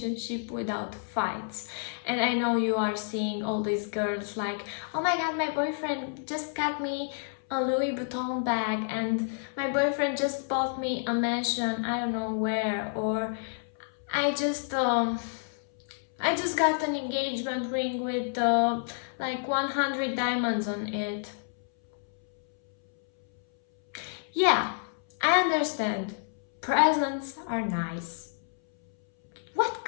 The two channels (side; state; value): right; silent; 58 dB below the other